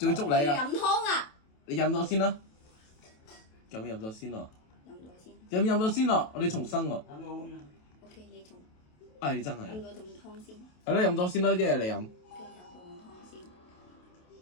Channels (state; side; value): late; right; 28 ms